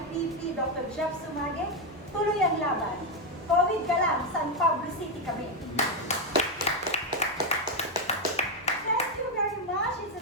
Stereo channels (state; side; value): normal; both; correlation 0.05